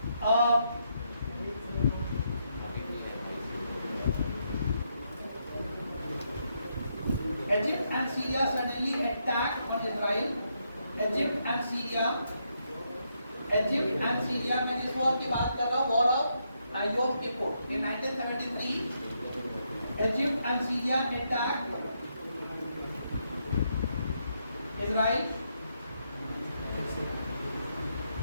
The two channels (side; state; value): both; inverted; correlation -0.79